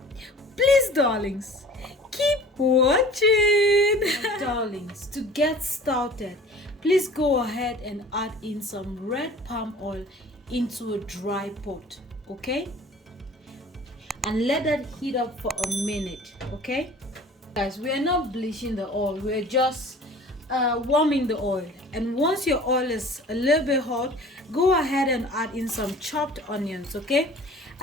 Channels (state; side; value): normal; both; correlation 0.45